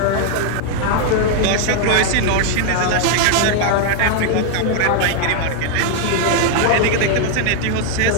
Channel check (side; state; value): both; different; correlation 0.00